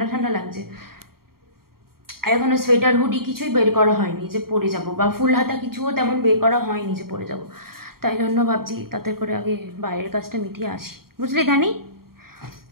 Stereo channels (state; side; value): late; left; 0.93 ms